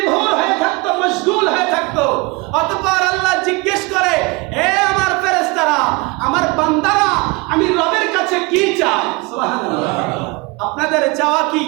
হয়ে থাকতো, মশগুল হয়ে থাকতো। অতঃপর আল্লাহ জিজ্ঞেস করে, হে আমার ফেরেশতারা, আমার বান্দারা আমি রবের কাছে কি চাই? সুবহানাল্লাহ। আপনাদের চাওয়া কি?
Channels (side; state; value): left; quieter; 26.6 dB